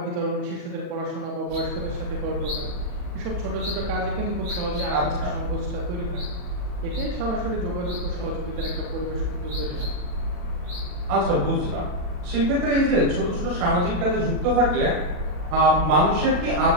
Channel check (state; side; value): late; left; 40 ms